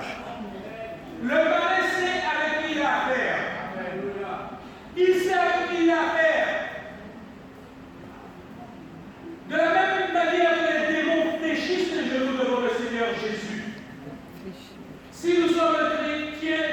Le malin sait avec qui il a affaire. Il sait avec qui il a affaire. De la même manière que les démons fléchissent les genoux devant le Seigneur Jésus. Si nous sommes un chrétien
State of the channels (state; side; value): identical; both; correlation 1.00